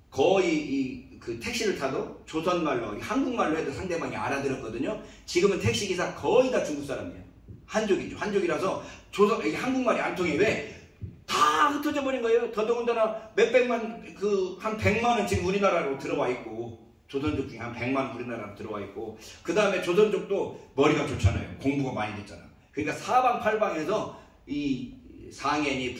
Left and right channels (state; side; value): identical; both; correlation 1.00